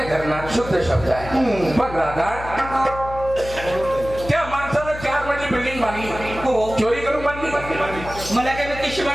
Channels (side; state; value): left; noise; hum, 11 dB below the sound